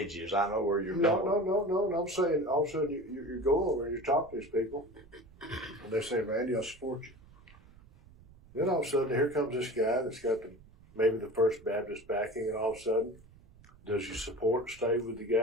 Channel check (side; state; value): right; noise; rumble, 24 dB below the sound